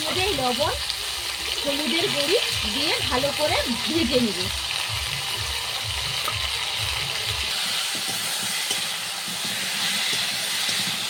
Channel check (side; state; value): both; identical; correlation 1.00